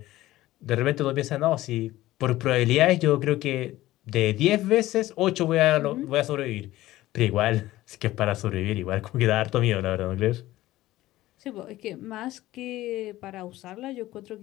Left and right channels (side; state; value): right; quieter; 16.2 dB